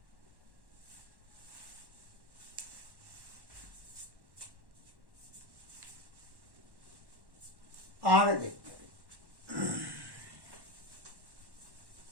आगे देखते हैं।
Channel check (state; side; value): late; left; 1.1 ms